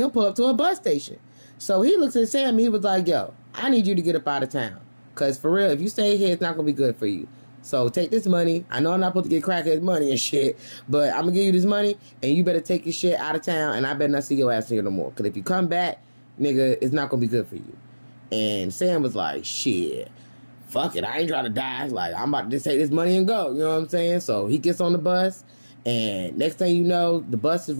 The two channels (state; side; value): inverted; both; correlation -1.00